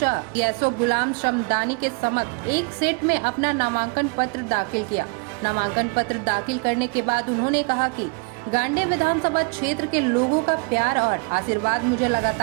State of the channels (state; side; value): quieter; left; 32.3 dB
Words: एसओ गुलाम शमदानी के समक्ष एक सेट में अपना नामांकन पत्र दाखिल किया। नामांकन पत्र दाखिल करने के बाद उन्होंने कहा कि गांडे विधानसभा क्षेत्र के लोगों का प्यार और आशीर्वाद मुझे